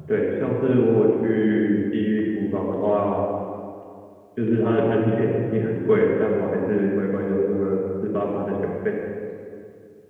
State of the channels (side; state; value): both; identical; correlation 1.00